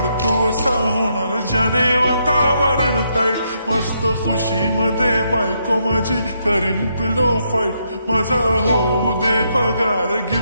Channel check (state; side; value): inverted; both; correlation -0.77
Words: असा होणार ज्याने वातावरण ताईट. मस्त खुशी मध्ये बायको माझी करीन पिलो फाईट. माझा होऊ दे पगार